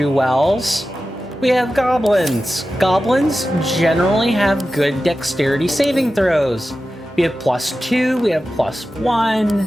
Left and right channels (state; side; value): normal; both; correlation 0.93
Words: we have goblins. Goblins generally have good dexterity saving throws. We have +2, we have +1.